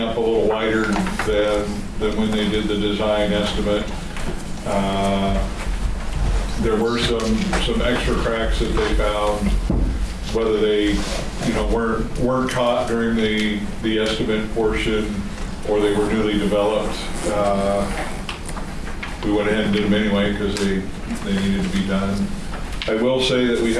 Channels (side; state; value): both; identical; correlation 1.00